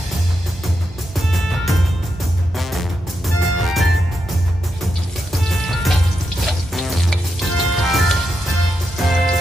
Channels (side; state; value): both; normal; correlation 0.85